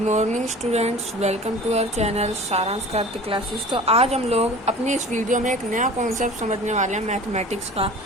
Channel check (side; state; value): both; normal; correlation 0.41